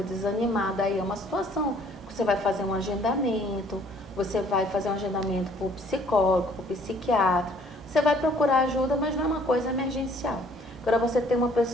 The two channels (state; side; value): normal; both; correlation 0.58